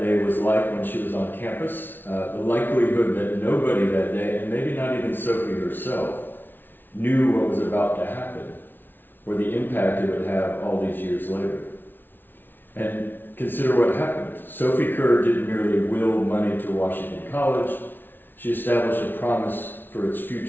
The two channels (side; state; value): right; late; 0.095 ms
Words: day was like when she was on campus, the likelihood that nobody that day, and maybe not even Sophie herself, knew what was about to happen, or the impact it would have all these years later. And consider what happened. Sophie Kerr didn't merely will money to Washington College, she established a promise for its